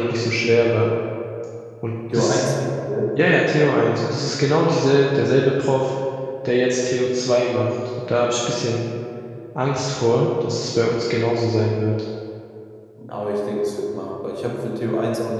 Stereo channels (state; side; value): identical; both; correlation 1.00